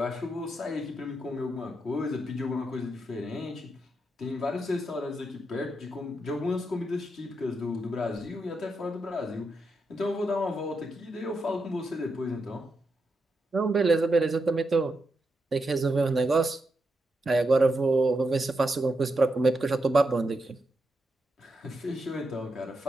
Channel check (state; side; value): normal; both; correlation 0.84